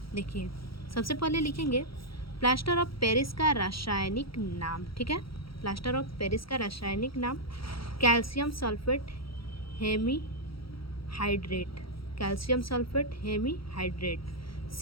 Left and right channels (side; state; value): right; late; 0.75 ms